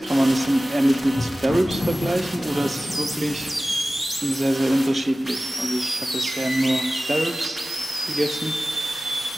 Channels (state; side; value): normal; both; correlation 0.96